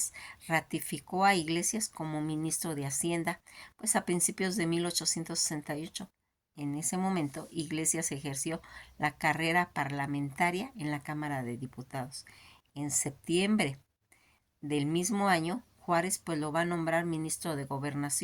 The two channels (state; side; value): identical; both; correlation 1.00